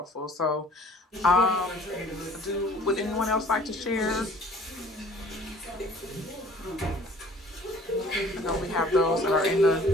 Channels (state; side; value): normal; both; correlation 0.52